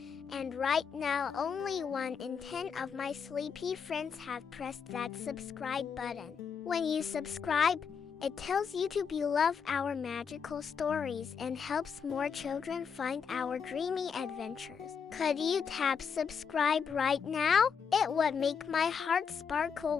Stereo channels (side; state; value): right; quieter; 6.5 dB